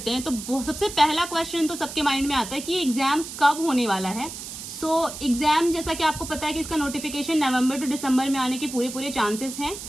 हैं। तो सबसे पहला क्वेश्चन तो सबके माइंड में आता है कि एग्जाम कब होने वाला है। सो एग्जाम जैसा कि आपको पता है कि इसका नोटिफिकेशन नवंबर टू दिसंबर में आने के पूरे चांसेस हैं।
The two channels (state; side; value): noise; right; hiss, 10 dB below the sound